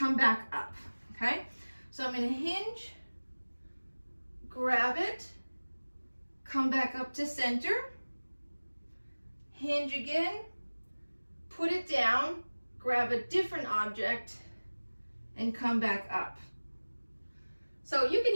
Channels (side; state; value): both; inverted; correlation -1.00